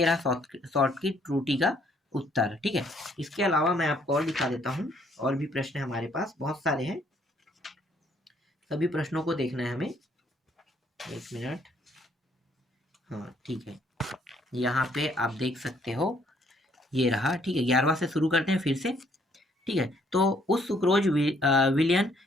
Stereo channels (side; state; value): both; normal; correlation 0.66